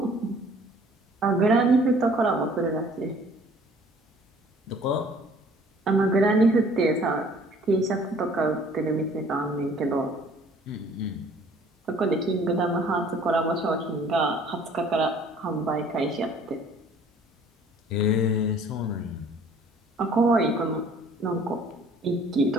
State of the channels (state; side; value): normal; both; correlation 0.54